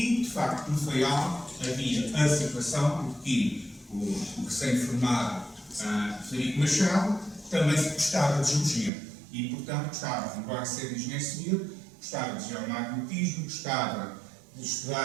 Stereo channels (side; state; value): left; drops out; at 8.9 s